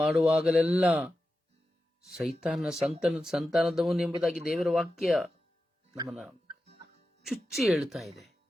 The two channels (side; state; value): both; normal; correlation 0.92